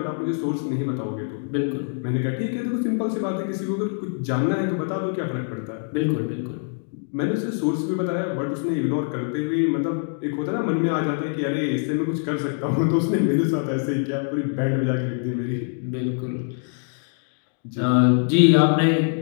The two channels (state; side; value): silent; right; 62 dB below the other